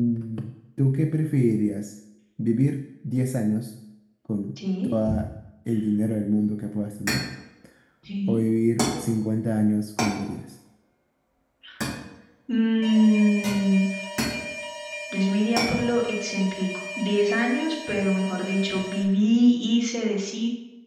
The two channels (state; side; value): identical; both; correlation 1.00